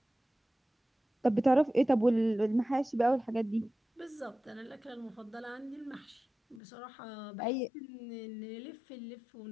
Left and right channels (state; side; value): drops out; right; at 6.6 s